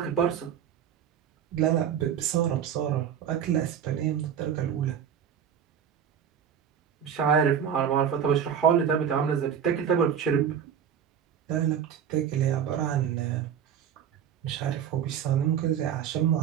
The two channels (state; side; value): quieter; left; 8.6 dB